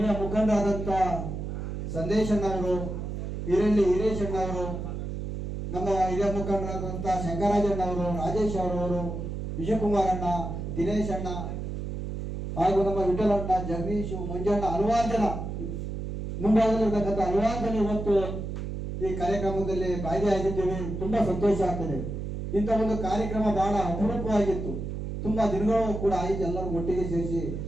ಮುಖಂಡರಾದಂಥ ಸಂದೇಶಣ್ಣವರು, ಹಿರೇಶಣ್ಣವರು, ನಮ್ಮ ಹಿರಿಯ ಮುಖಂಡರಾದಂಥ ಶಂಕರಾಜಣ್ಣವರು, ರಾಜೇಶ್ ಅವರವರು, ವಿಜಯಕುಮಾರಣ್ಣ, ದಿನೇಶ್ ಅಣ್ಣ ಹಾಗೂ ನಮ್ಮ ವಿಠಲಣ್ಣ, ಜಗದೀಶ್, ಮಂಜಣ್ಣ, ಹಲವಾರು ಜನ ಮುಂಭಾಗದಲ್ಲಿರ್ತಕ್ಕಂಥ ಹಲವಾರು ಜನ ಇವತ್ತು ಈ ಕಾರ್ಯಕ್ರಮದಲ್ಲಿ ಭಾಗಿಯಾಗಿದ್ದೇವೆ. ತುಂಬಾ ಸಂತೋಷ ಆಗ್ತದೆ. ಇಂಥ ಒಂದು ಕಾರ್ಯಕ್ರಮ ಬಹಳ ಅಪರೂಪವಾಗಿತ್ತು. ತುಂಬಾ ದಿನಗಳು ಕೂಡ ಆಯಿತು ಎಲ್ಲರೂ ಒಟ್ಟಿಗೆ ಸೇರಿಸಿ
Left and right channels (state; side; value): noise; right; hum, 5 dB below the sound